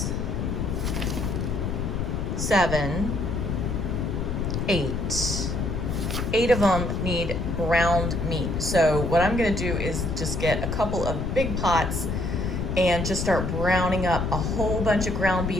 7, 8. 8 of them need browned meat. So what I'm gonna do is just get a couple of big pots and just start browning up a whole bunch of ground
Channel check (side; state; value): left; noise; rumble, 1 dB below the sound